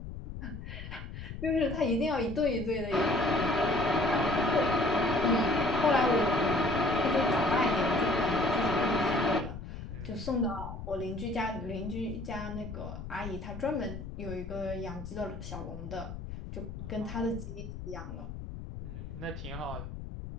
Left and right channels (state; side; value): noise; left; rumble, 9 dB below the sound